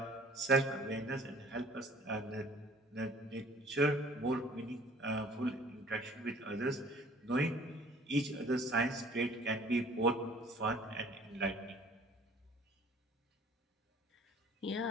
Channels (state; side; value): normal; both; correlation 0.52